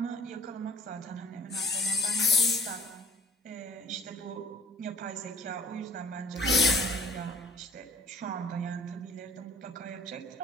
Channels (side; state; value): both; normal; correlation 0.50